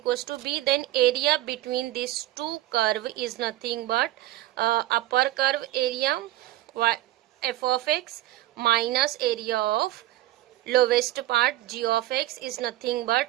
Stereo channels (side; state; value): left; quieter; 15.7 dB